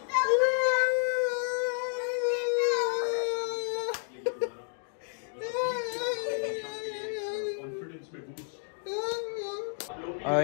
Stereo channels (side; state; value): right; silent; 57 dB below the other